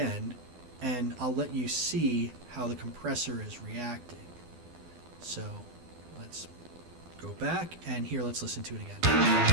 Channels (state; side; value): late; left; 12 ms